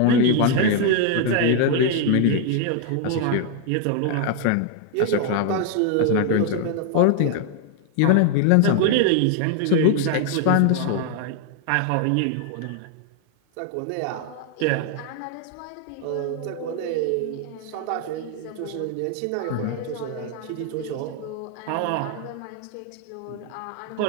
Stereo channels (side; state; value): both; different; correlation 0.00